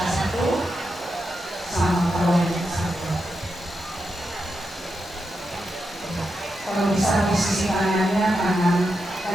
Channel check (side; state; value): both; normal; correlation 0.86